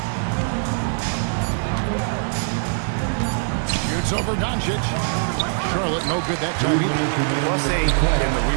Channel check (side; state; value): left; silent; 64 dB below the other